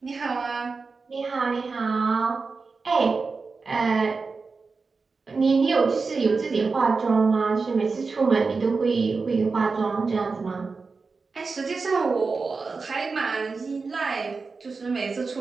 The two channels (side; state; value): left; quieter; 4.4 dB